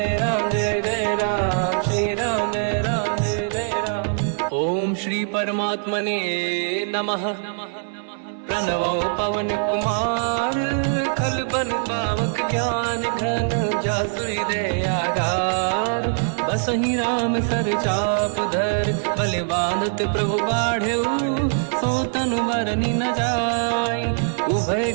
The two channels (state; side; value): silent; left; 64 dB below the other